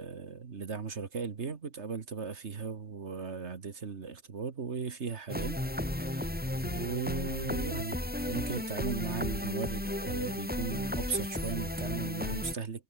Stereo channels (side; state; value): both; normal; correlation 0.22